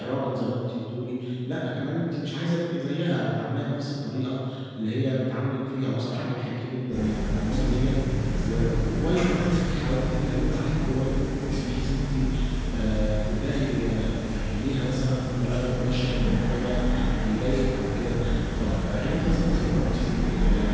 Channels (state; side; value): identical; both; correlation 1.00